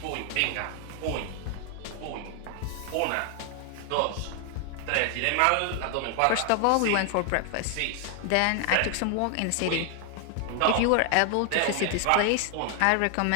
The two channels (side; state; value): both; different; correlation 0.00